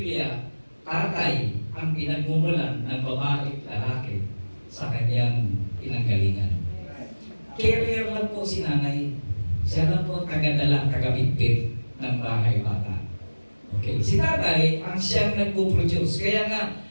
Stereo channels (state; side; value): inverted; both; correlation -1.00